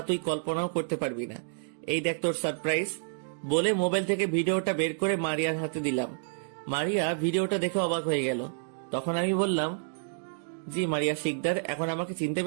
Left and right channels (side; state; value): left; silent; digital silence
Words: তুই কল্পনাও করতে পারবি না। এই দেখ তোর সারপ্রাইজ। বলে মোবাইল থেকে ভিডিওটা বের করে মারিয়ার হাতে দিলাম। মারিয়া ভিডিওটা দেখে অবাক হয়ে গেল। তখন আমি বললাম, জি মারিয়া শিকদার, এখন আমাকে চিনতে